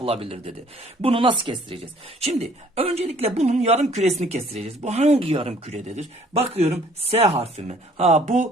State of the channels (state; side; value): normal; both; correlation 0.58